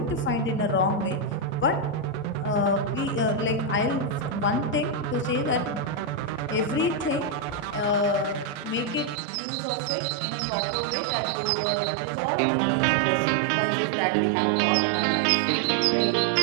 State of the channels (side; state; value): left; drops out; at 9.2 s